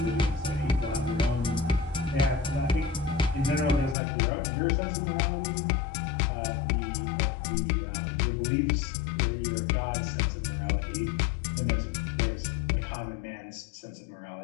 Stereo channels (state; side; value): drops out; right; at 4.0 s